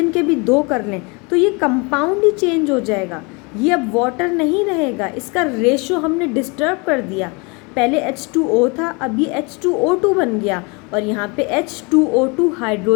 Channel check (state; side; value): quieter; right; 29.5 dB